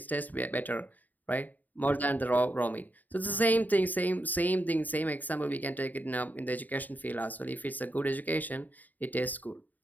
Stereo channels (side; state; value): right; late; 0.083 ms